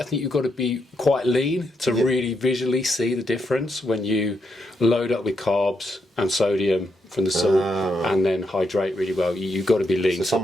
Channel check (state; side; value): normal; both; correlation 0.80